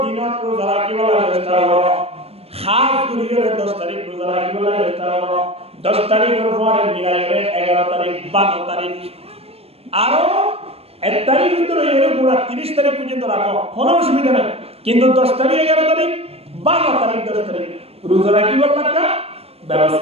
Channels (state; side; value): late; left; 0.29 ms